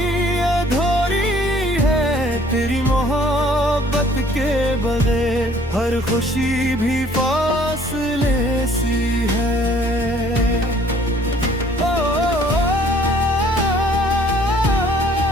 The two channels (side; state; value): both; normal; correlation 0.58